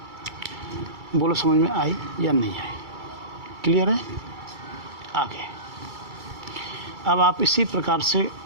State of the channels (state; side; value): late; left; 2.3 ms